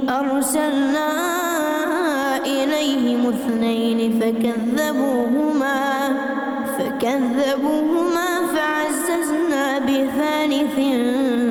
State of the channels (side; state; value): both; identical; correlation 1.00